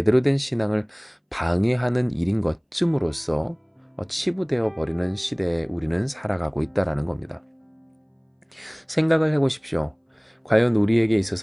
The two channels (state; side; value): identical; both; correlation 1.00